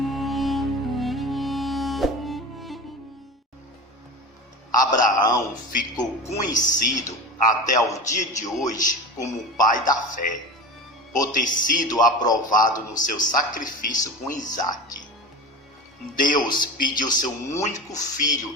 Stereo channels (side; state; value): both; normal; correlation 0.30